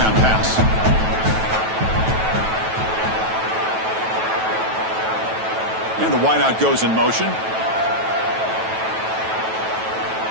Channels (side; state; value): left; late; 9.2 ms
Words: pass. And the wideout goes in motion.